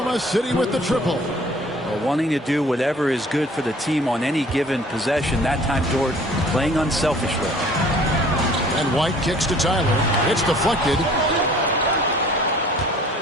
City with the triple. Wanting to do whatever is good for the team on any given possession. That time, Dort playing unselfishly. And White kicks to Tyler. It's deflected.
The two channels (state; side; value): normal; both; correlation 0.52